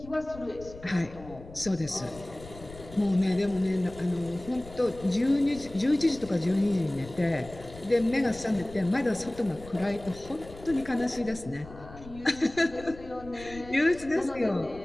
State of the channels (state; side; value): noise; left; rumble, 17 dB below the sound